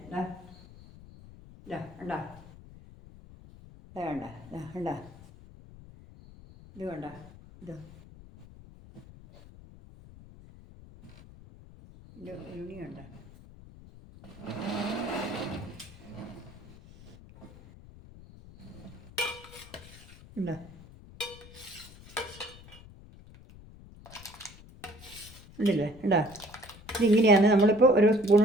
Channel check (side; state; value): left; noise; rumble, 19 dB below the sound